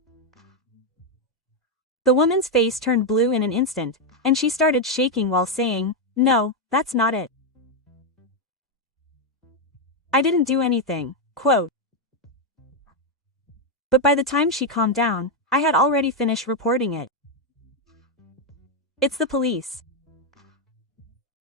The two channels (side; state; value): both; normal; correlation 0.03